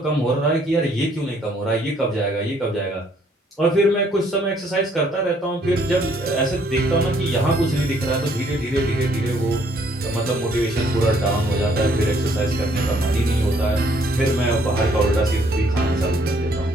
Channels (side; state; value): both; normal; correlation 0.65